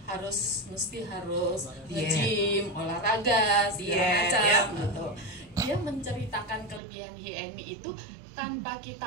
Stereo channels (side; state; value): left; drops out; at 6.8 s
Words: mesti harus nge-gym, olahraga segala macam gitu. Dia menceritakan kelebihan HiMi itu tanpa